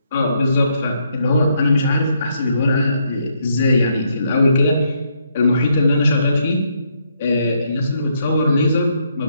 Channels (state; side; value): inverted; both; correlation -0.75